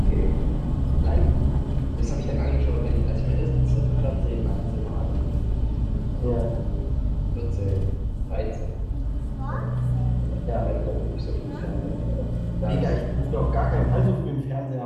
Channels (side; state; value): both; identical; correlation 1.00